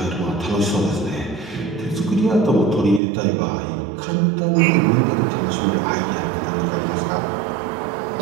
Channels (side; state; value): left; drops out; at 3.0 s